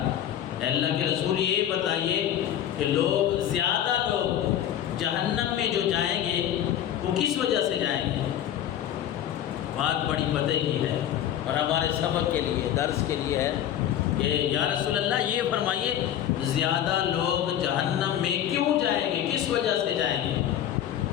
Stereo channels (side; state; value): right; quieter; 10.9 dB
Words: اللہ کے رسول یہ بتائیے کہ لوگ زیادہ لوگ جہنم میں جو جائیں گے وہ کس وجہ سے جائیں گے؟ بات بڑی پتہ کی ہے اور ہمارے سبق کے لیے، درس کے لیے ہے کہ یا رسول اللہ یہ فرمائیے زیادہ لوگ جہنم میں کیوں جائیں گے، کس وجہ سے جائیں گے،